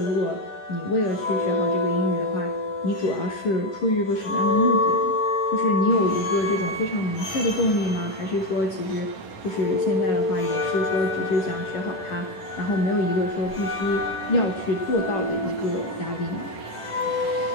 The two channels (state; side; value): late; right; 10 ms